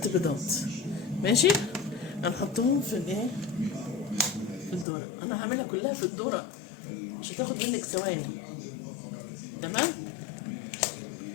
بيضات. ماشي. هنحطهم في الايه، في الدورة. انا هعملها كلها في الدورة، مش هتاخد منك ثواني. تمام.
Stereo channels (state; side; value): drops out; right; at 4.9 s